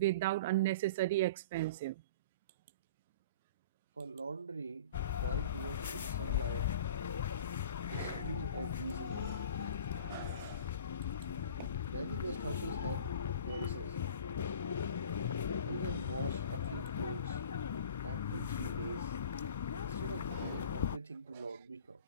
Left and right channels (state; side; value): inverted; both; correlation -0.40